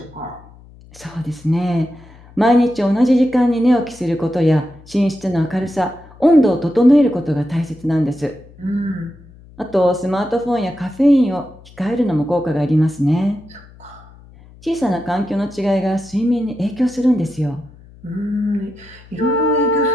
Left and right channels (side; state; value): left; noise; hum, 23 dB below the sound